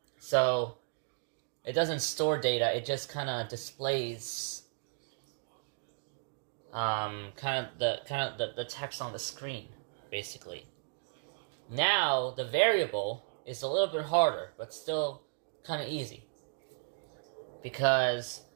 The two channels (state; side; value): silent; left; digital silence